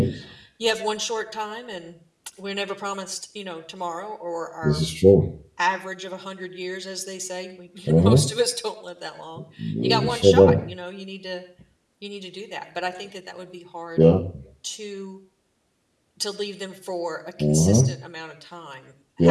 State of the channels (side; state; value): both; identical; correlation 1.00